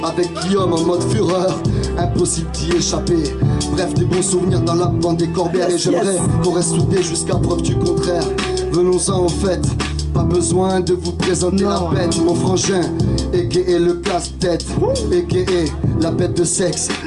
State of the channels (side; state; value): both; identical; correlation 1.00